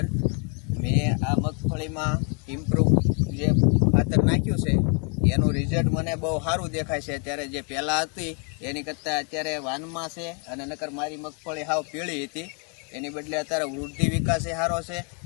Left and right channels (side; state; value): right; quieter; 38.8 dB